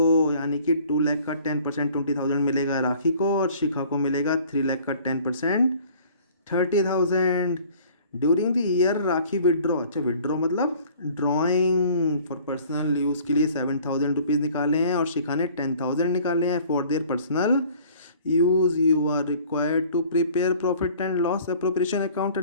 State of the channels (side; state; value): both; inverted; correlation -0.52